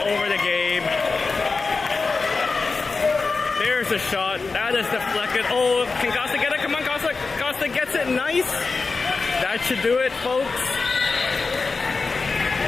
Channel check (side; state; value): right; quieter; 4.2 dB